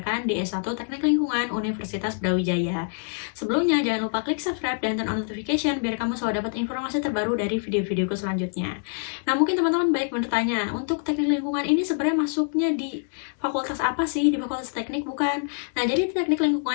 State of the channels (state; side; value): silent; right; 61 dB below the other